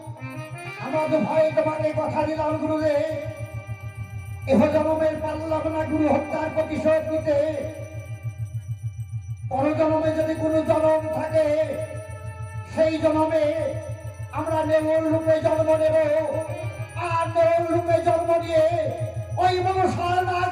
ভাই তোমাকে কথা দিলাম গুরুদেব, এহ জন্মের পারলাম না গুরু হত্যার প্রতিশোধ নিতে। পরজন্মে যদি কোনো জন্ম থাকে, সেই জন্মে আমরা নেউল রূপে জন্ম নেব। আর নেউল রূপে জন্ম নিয়ে ওই মনসার নাক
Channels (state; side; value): identical; both; correlation 1.00